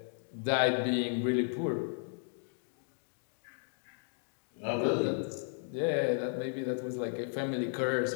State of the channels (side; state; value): right; silent; 55 dB below the other